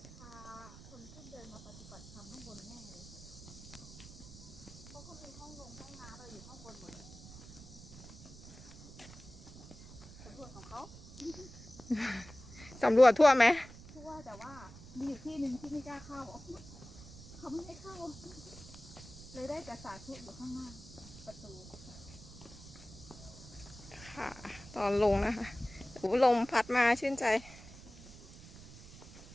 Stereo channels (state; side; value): noise; right; rumble, 16 dB below the sound